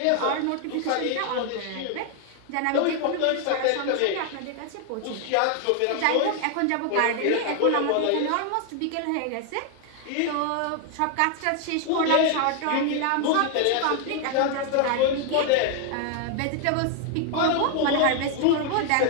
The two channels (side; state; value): both; different; correlation 0.00